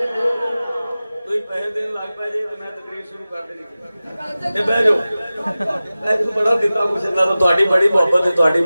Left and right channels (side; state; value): both; inverted; correlation -0.96